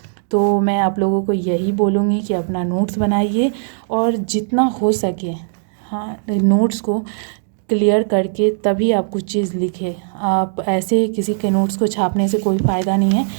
तो मैं आप लोगों को यही बोलूँगी कि अपना नोट्स बनाइए और जितना हो सके हाँ नोट्स को क्लियर करके तभी आप कुछ चीज़ लिखें। आप ऐसे किसी के नोट्स को छापने से कोई फ़ायदा नहीं है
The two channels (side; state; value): left; silent; digital silence